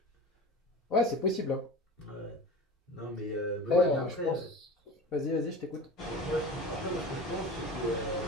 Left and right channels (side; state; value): both; normal; correlation 0.33